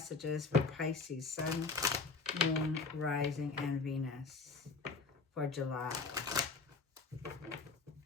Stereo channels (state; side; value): quieter; right; 4.3 dB